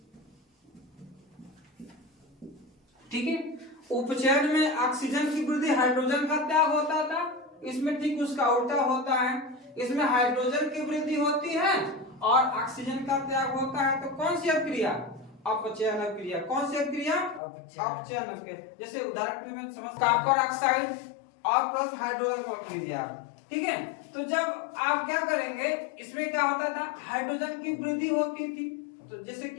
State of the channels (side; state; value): right; drops out; at 17.4 s